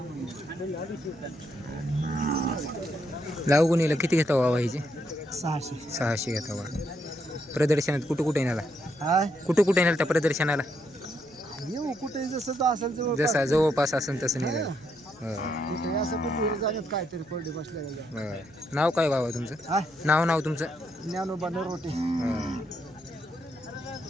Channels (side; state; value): left; noise; hum, 27 dB below the sound